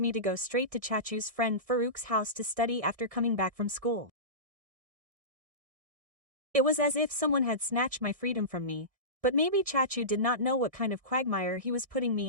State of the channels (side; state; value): left; late; 1.6 ms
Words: to go straight to Chachu's friend Farouk's house to study after coming back from school. It was as if someone had snatched my freedom from me, but maybe Chachu did not know what kind of quagmire he was putting